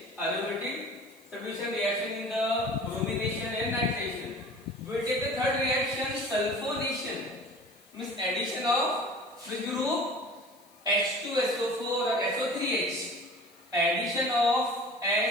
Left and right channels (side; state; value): left; noise; hiss, 28 dB below the sound